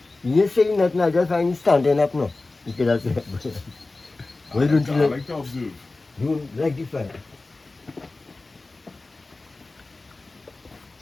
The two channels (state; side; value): quieter; right; 3.3 dB